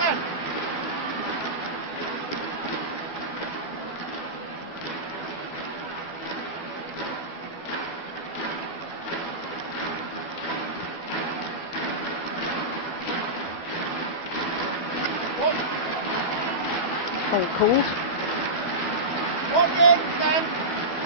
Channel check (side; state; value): right; late; 12 ms